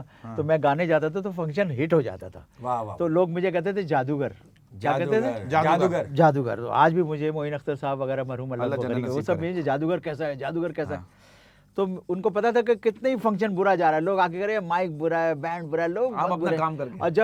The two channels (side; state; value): both; identical; correlation 1.00